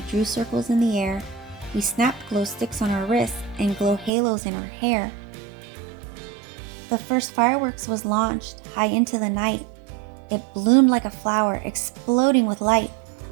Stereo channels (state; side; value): drops out; left; at 4.1 s